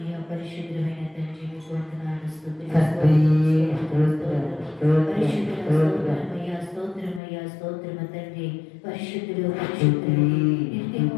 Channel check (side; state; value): right; drops out; at 7.2 s